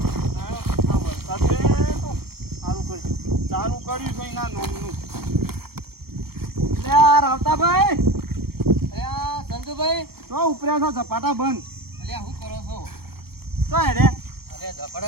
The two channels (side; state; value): left; late; 0.95 ms